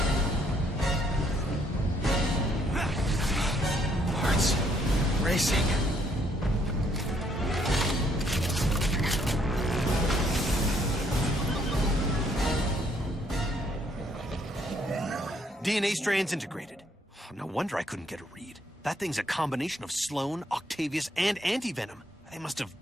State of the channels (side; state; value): both; normal; correlation 0.68